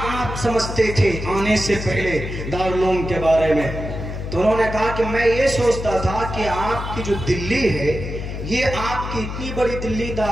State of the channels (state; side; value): noise; left; hum, 6 dB below the sound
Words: آپ سمجھتے تھے آنے سے پہلے دارالعلوم کے بارے میں؟ تو انہوں نے کہا کہ میں یہ سوچتا تھا کہ آپ کی جو دلی ہے، یہ آپ کی اتنی بڑی دلی